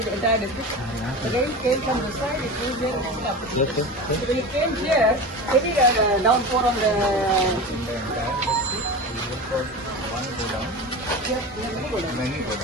the entire district. The rain came from this side, it moved here and ended up. So when it came here, heavy downpour on the...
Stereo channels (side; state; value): both; normal; correlation 0.28